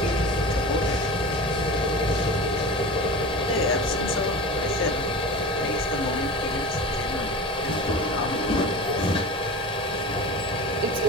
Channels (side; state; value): both; normal; correlation 0.32